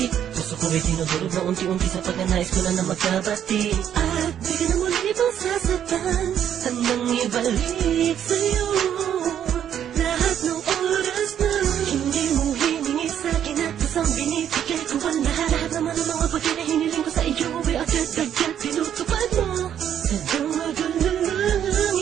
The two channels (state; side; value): quieter; left; 9.7 dB